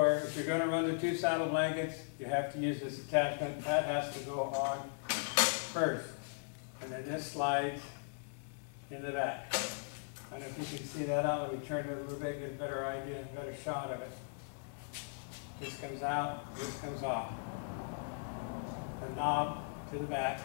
if you're going to run the 2 saddle blankets, you have to use this attachment. That has to go on first. And then this slides in the back. I don't know if you can see that out. Let me turn it a little bit, get a better idea, a better shot of it. This comes out, this comes off. The knob to the back,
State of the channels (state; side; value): silent; right; digital silence